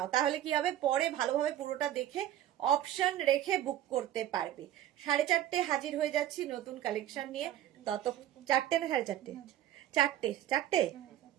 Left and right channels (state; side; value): quieter; left; 12.2 dB